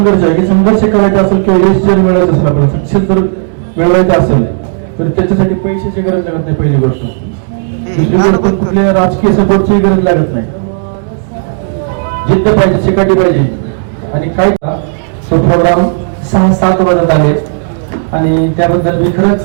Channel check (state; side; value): silent; left; digital silence